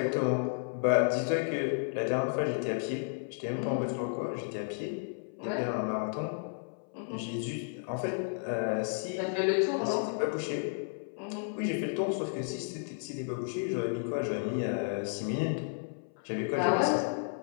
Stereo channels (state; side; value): silent; right; 56 dB below the other